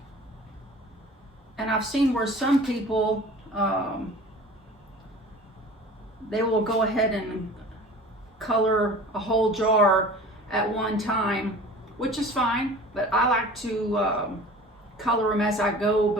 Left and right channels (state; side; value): normal; both; correlation 0.42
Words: And I've seen where some people they will go ahead and color a whole jar at one time, which is fine, but I like to color them as I go